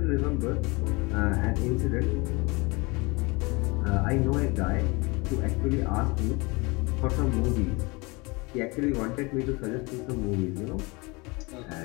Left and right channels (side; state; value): right; quieter; 26.4 dB